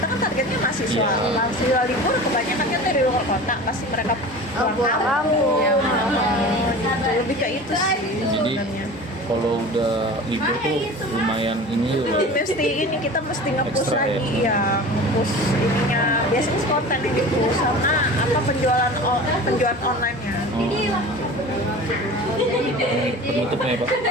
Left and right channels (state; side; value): normal; both; correlation 0.37